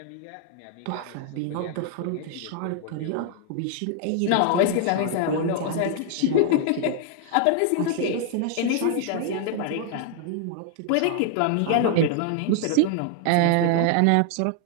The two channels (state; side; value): different; both; correlation 0.00